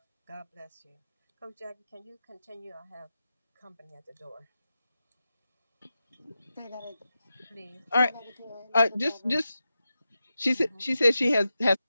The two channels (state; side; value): inverted; both; correlation -0.91